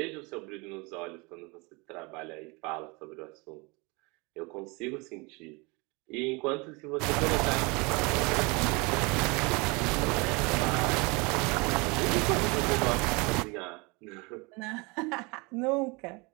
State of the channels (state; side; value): quieter; left; 27.9 dB